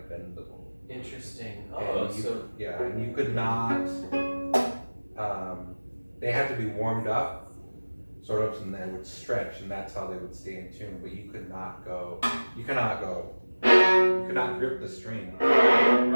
bendable. Interesting. And and you could not, they had to be warmed up, sort of, and they would stretch, and that's how they would stay in tune, but you could not grip the string.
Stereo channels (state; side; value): inverted; both; correlation -1.00